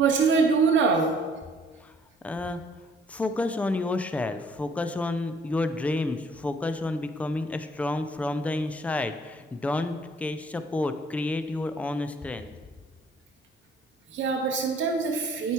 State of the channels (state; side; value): normal; both; correlation 0.59